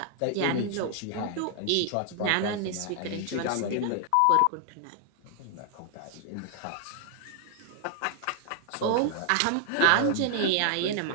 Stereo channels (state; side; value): different; both; correlation 0.00